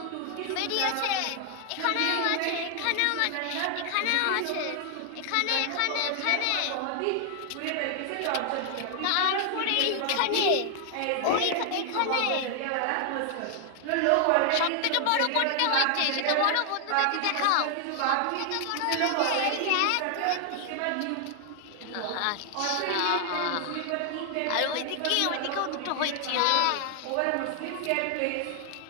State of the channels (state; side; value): different; both; correlation 0.00